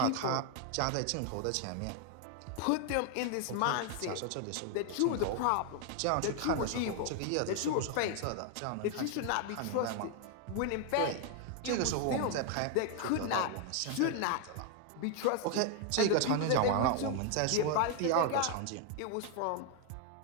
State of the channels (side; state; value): both; different; correlation 0.00